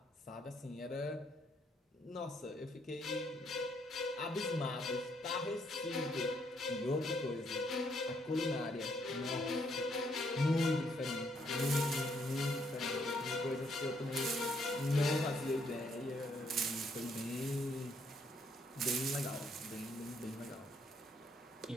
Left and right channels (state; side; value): normal; both; correlation 0.71